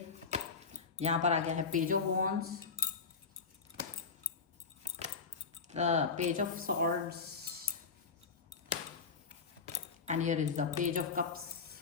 यहाँ पर आ गया है page of wands, the page of swords and here is the page of cups.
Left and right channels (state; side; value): quieter; right; 5.2 dB